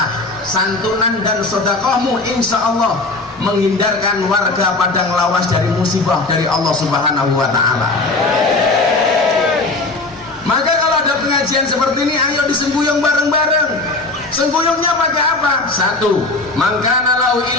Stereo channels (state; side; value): quieter; right; 3.1 dB